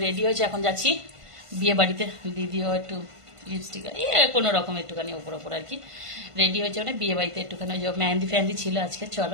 রেডি হয়েছি, এখন যাচ্ছি বিয়ে বাড়িতে। দিদিও একটু লিপস্টিক কোনো রকম একটুখানি ওপর ওপর আর কি রেডি হয়েছে, মানে বিয়ে বাড়িতে একটুখানি মেহেন্দি ফ্যান্দি ছিল আজকে,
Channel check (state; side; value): late; left; 1.5 ms